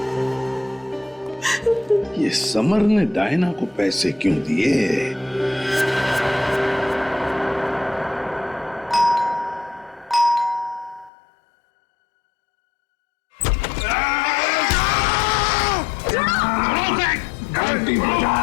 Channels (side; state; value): right; drops out; at 11.1 s